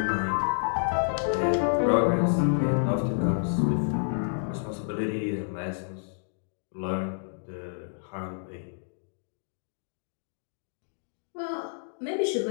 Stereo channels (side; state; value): right; silent; digital silence